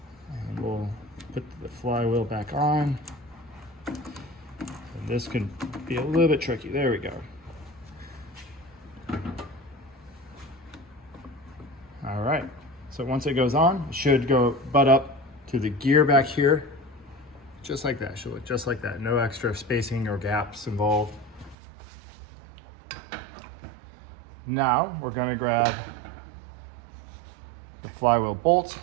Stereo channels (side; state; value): left; drops out; at 21.6 s